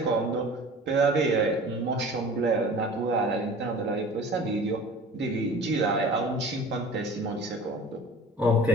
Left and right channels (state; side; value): normal; both; correlation 0.42